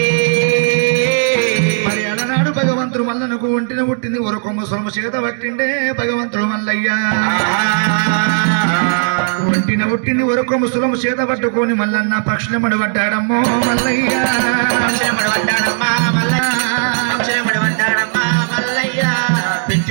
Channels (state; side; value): silent; left; digital silence